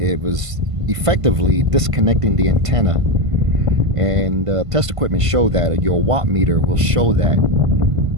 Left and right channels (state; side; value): late; left; 1.5 ms